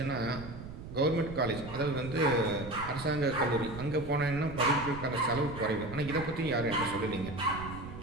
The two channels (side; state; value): right; noise; rumble, 11 dB below the sound